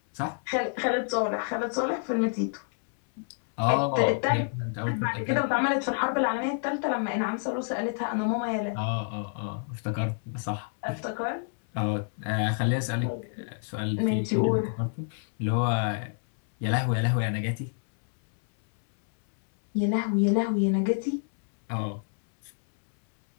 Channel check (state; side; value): silent; right; 59 dB below the other